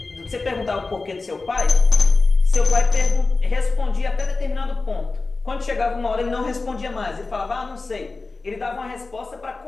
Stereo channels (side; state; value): right; quieter; 3.7 dB